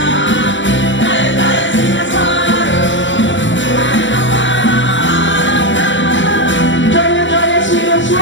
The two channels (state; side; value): late; right; 0.54 ms